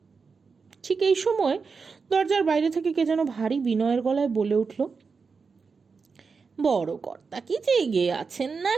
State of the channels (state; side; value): quieter; left; 5.0 dB